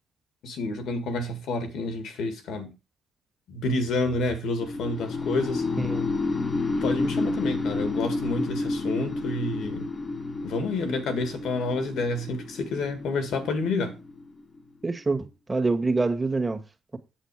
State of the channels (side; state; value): both; normal; correlation 0.74